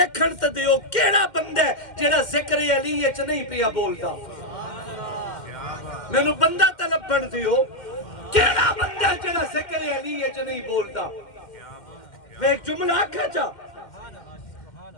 تے دیو کیڑا بندہ ہے جڑا ذکر علی وچ نہیں پیا بولدا. مینوں بندہ تے لبھن دیو کیڑا بندہ جڑا ذکر علی وچ نہیں بولدا. میں ایک جملہ آکھا چا,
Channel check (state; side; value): late; right; 2.1 ms